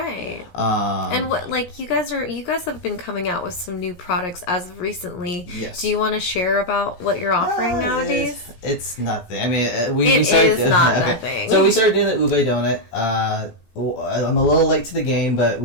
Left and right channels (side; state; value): right; late; 17 ms